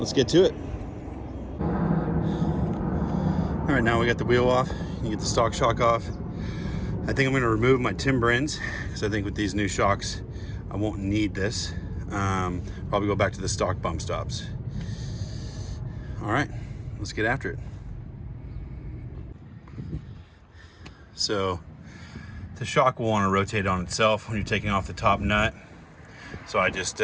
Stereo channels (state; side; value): identical; both; correlation 1.00